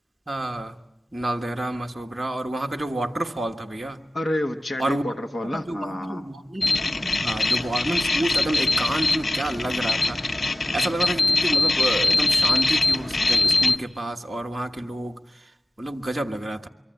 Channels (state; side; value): normal; both; correlation 0.95